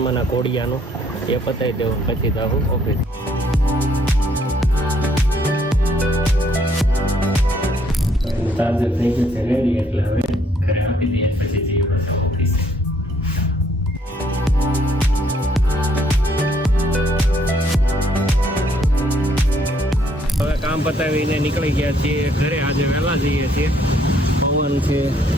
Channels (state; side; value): normal; both; correlation 0.67